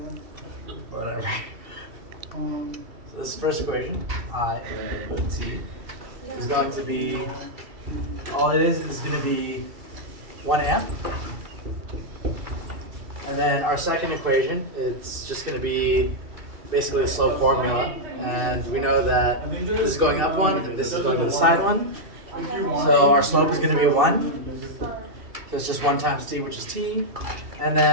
Whatever. So this first equation, I of t, is going to be, all it is going to be 1 amp. And then our second equation, it's just going to be basically a slope formula, and we know that this is going up 1 and this is going to the side 1. So our slope is going to be 1. So it's just 1 times t, which is t. And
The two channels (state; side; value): late; left; 2.7 ms